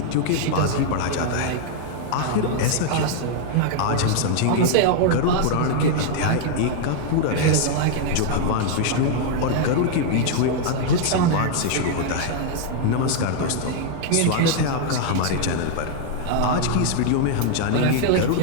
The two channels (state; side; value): different; both; correlation 0.00